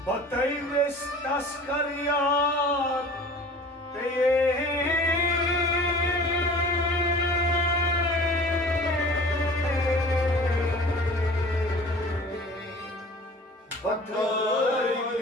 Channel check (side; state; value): both; normal; correlation 0.44